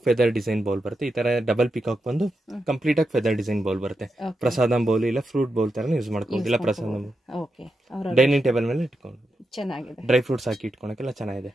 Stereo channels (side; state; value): both; normal; correlation 0.87